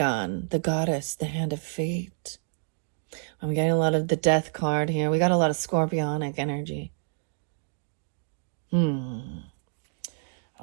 the goddess, the hand of fate. I'm getting a lot of the death card here. We got a lot of scorpionic energy.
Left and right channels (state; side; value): silent; left; digital silence